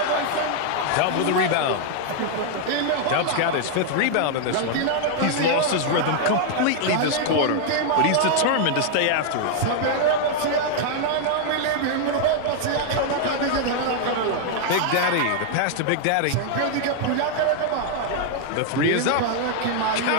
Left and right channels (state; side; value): different; both; correlation 0.00